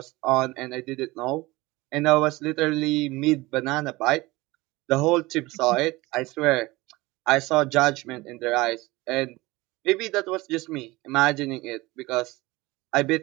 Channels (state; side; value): quieter; left; 21.0 dB